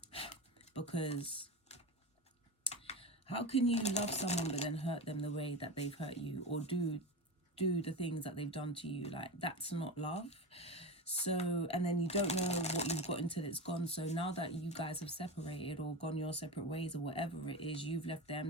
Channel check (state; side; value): normal; both; correlation 0.23